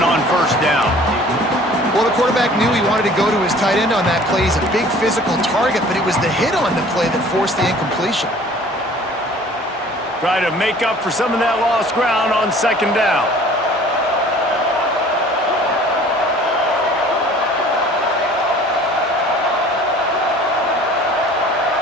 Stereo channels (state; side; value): normal; both; correlation 0.50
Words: on first down. Well, the quarterback knew he wanted to go to his tight end on that play. He's a big physical target, but it was the hit on the play that forced the incompletion. Try to make up for some of that lost ground on second down.